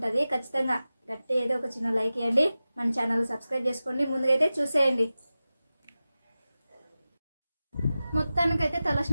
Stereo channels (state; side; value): inverted; both; correlation -0.95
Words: ఖచ్చితంగా గట్టి ఏదో ఒక చిన్న లైక్ ఇవ్వండి, మన ఛానల్ సబ్స్క్రైబ్ చేసుకోండి. ముందుకైతే చూసేయండి. మొత్తానికైతే